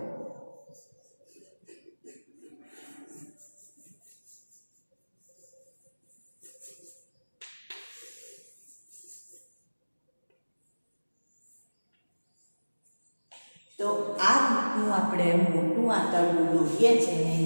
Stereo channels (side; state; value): both; inverted; correlation -1.00